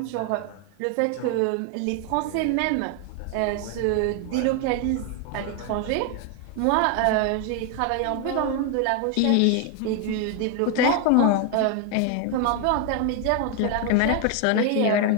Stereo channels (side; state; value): both; different; correlation 0.01